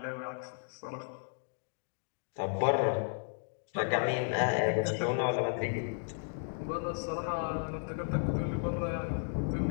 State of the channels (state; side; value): silent; right; digital silence